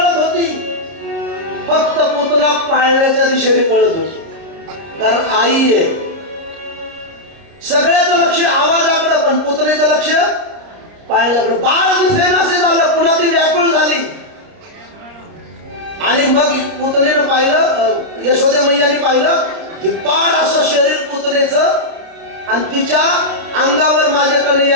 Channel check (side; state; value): left; late; 30 ms